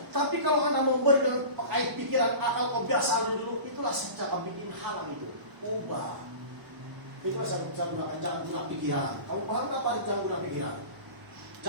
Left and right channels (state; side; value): late; left; 1.0 ms